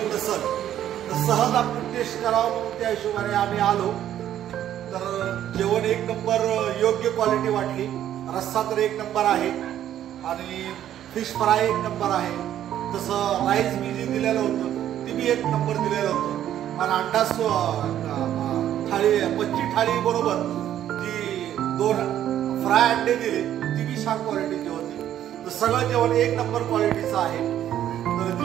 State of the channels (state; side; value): quieter; left; 11.3 dB